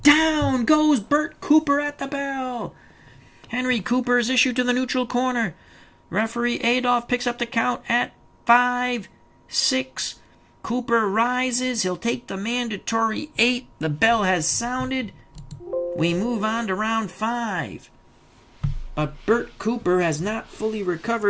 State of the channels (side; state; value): both; identical; correlation 1.00